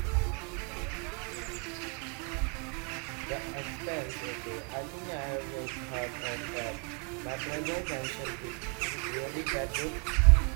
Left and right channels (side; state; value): left; quieter; 36.1 dB